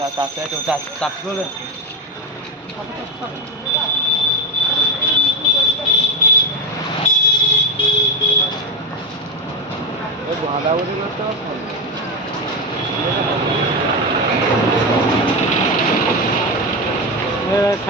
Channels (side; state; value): both; normal; correlation 0.14